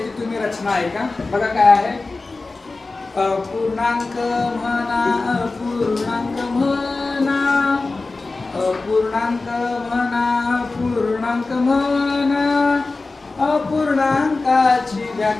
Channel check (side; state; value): right; quieter; 3.6 dB